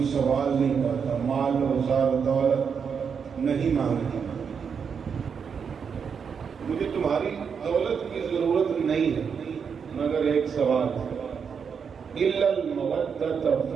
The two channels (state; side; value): quieter; left; 6.5 dB